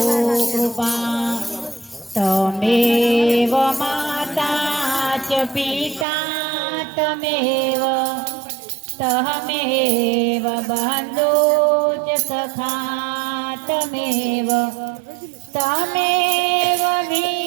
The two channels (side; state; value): left; drops out; at 6.1 s